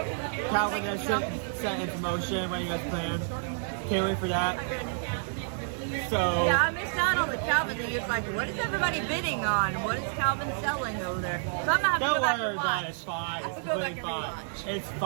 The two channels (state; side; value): silent; left; digital silence